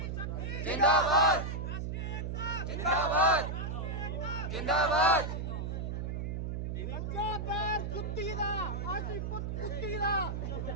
जिंदाबाद, जिंदाबाद, जिंदाबाद। सच्चा पैर जुत्ती दा, आसी पुत कुत्ती दा,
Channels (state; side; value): noise; right; hum, 3 dB below the sound